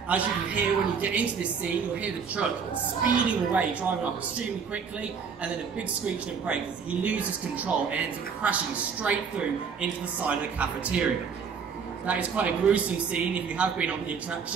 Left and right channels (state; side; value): quieter; left; 6.1 dB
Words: As you can hear when you get into this scene, you'll hear the truck speeding away, driving up extremely quickly, and then a big screeching and brake as he loses control and ends up crashing straight through into the side of the cafeteria. That is quite a gruesome scene if you have been on the